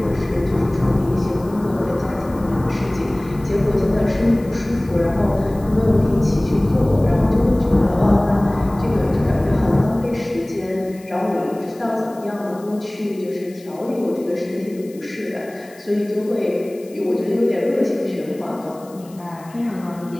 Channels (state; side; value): noise; left; hiss, 25 dB below the sound